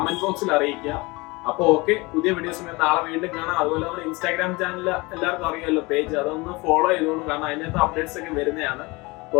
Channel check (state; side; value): quieter; right; 24.4 dB